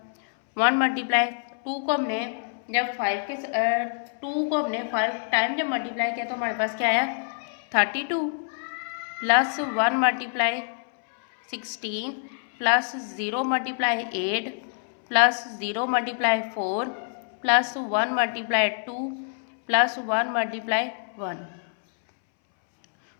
1 × 2 को हमने जब 5 के 2 को हमने 5 टाइम जब मल्टीप्लाई किया तो हमारे पास क्या आया 32 plus 1 × 16 plus 0 × 8 plus 0 × 4 plus 1 × 2 plus 1 × 1,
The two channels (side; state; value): right; silent; 61 dB below the other